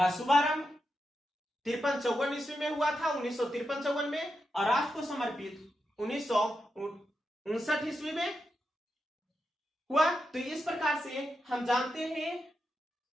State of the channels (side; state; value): both; normal; correlation 0.87